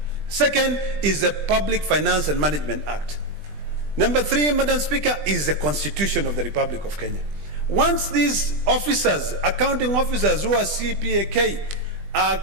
Second is the Public Finance and Management Act. Number 3, Madam Speaker, is the Constitution of the Republic of Kenya. Once these officers, accounting officers who are CPAK,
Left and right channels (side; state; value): left; late; 20 ms